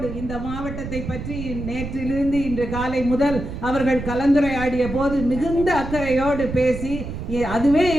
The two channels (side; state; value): right; noise; rumble, 8 dB below the sound